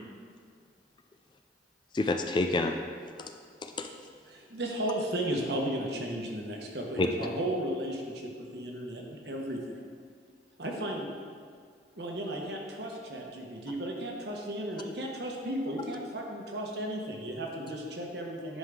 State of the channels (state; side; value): normal; both; correlation 0.44